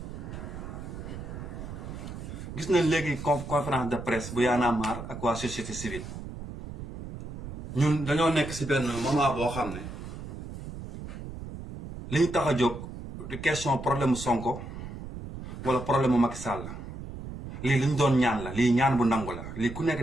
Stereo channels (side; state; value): right; noise; rumble, 10 dB below the sound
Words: Gis nañ léegi conférence de presse bu Y'en a marre ak waa société civile. Ñun dañoo nekk ci benn moment boo xam ne li ñu tax a jóg du question problème Sonko wala problème Macky Sall lii li ñu doon ñaan la lii ñaan bu nangu la lii ku nekk